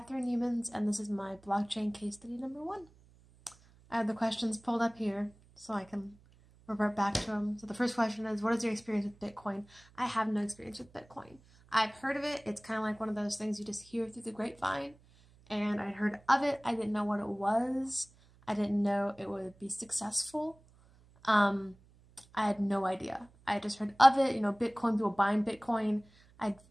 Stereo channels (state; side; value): noise; right; hum, 28 dB below the sound